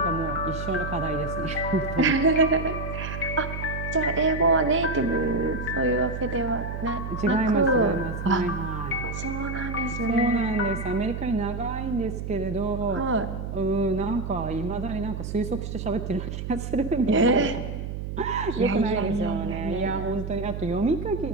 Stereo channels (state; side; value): noise; right; hum, 6 dB below the sound